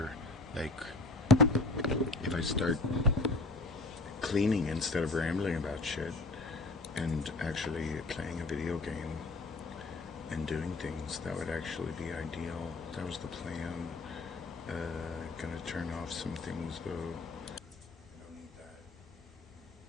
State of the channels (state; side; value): quieter; right; 3.2 dB